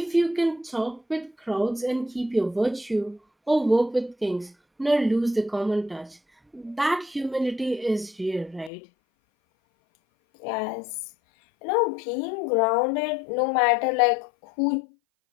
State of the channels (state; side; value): drops out; right; at 8.7 s